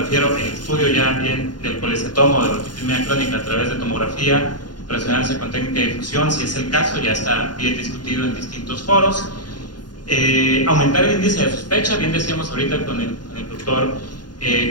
al estudio ya bien del colecistoma o de la otitis media crónica a través de tomografía, resonancia con técnica de difusión, si es el caso, ya está bien discutido en distintos foros. Aumentar el índice de sospecha, bien decíamos ahorita con el doctor,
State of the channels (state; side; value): late; right; 0.70 ms